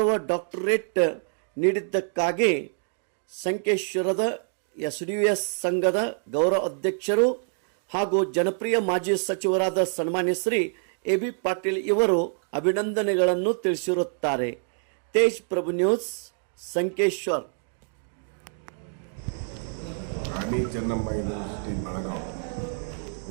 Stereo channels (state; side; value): silent; left; 61 dB below the other